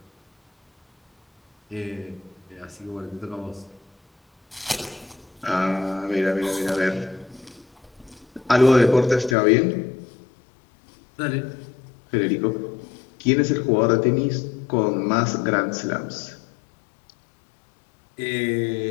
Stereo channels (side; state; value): right; drops out; at 9.3 s